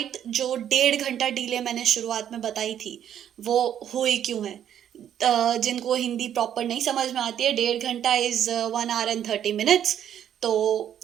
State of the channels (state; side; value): quieter; left; 10.0 dB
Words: जो 1.5 घंटा डिले मैंने शुरुआत में बताई थी वो हुई क्यों है. जिनको हिंदी प्रॉपर नहीं समझ में आती है, 1.5 घंटा इज 1 hour and 30 minutes. तो